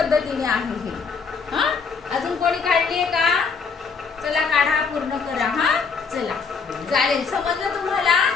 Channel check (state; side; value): quieter; right; 5.3 dB